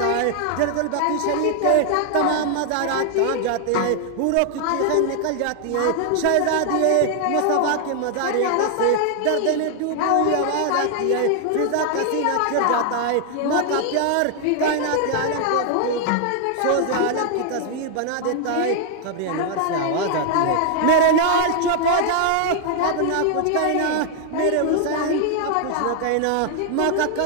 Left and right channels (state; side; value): different; both; correlation 0.00